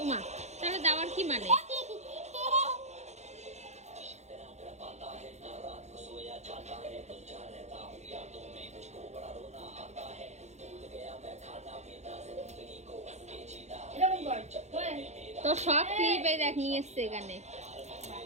ওমা, তাহলে দেওয়ার কি মানে? তো সব ক্লিপে দেখ নিয়ে এসছে এখানে।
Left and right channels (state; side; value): late; left; 0.33 ms